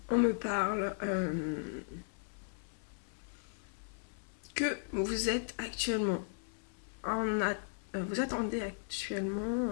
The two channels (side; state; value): right; silent; 53 dB below the other